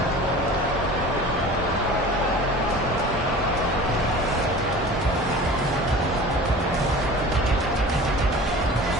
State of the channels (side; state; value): both; normal; correlation 0.39